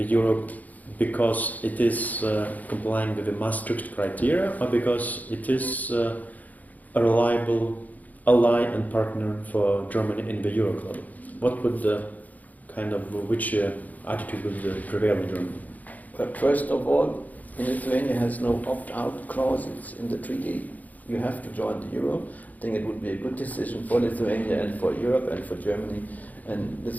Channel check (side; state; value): right; late; 0.079 ms